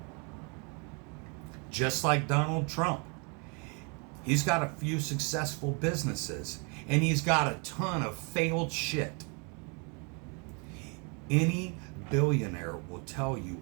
Just like Donald Trump. He's got a few successful businesses, and he's got a ton of failed shit. Any billionaire will tell you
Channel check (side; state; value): left; quieter; 34.6 dB